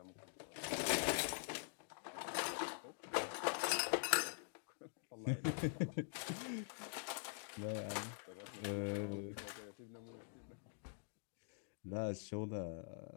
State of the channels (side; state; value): right; silent; digital silence